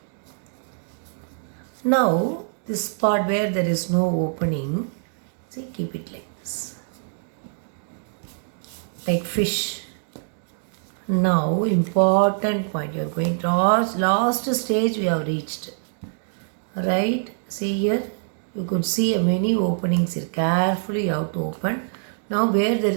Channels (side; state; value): left; silent; digital silence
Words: Now this part where there is no opening, see, keep it like this. Like fish. Now important point, you are going to last stage we have reached. Right, see here, you could see many openings here. Carefully you have to open. Now where there